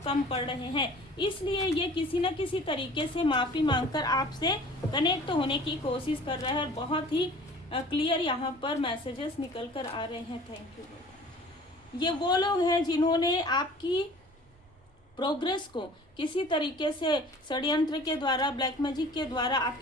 कम पड़ रहे हैं। इसलिए ये किसी न किसी तरीके से माफ़ी मांगकर आपसे कनेक्ट होने की कोशिश कर रहा है, और बहुत ही क्लियर यहाँ पर मैसेजेस निकल कर आ रहे हैं। Thank you. ये वो लोग हैं जिन्होंने आपकी प्रोग्रेस को किसी तरीके से षड्यंत्र के द्वारा, ब्लैक मैजिक के द्वारा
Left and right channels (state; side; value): normal; both; correlation 0.47